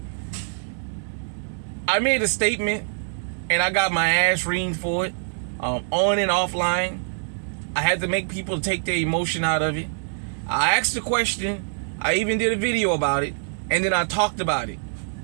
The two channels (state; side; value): silent; left; digital silence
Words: I made a statement and I got my ass reamed for it, on and offline. I had to make people take their emotion out of it. I asked the question, I even did a video about it, and then I talked about it.